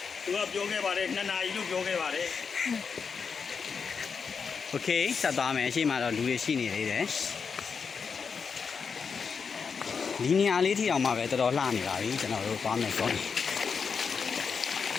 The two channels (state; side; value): quieter; right; 5.8 dB